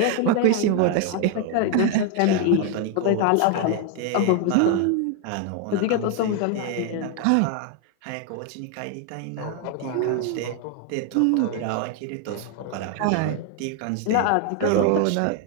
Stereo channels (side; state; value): both; different; correlation 0.01